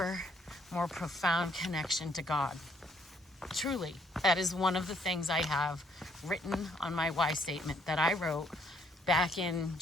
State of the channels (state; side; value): normal; both; correlation 0.67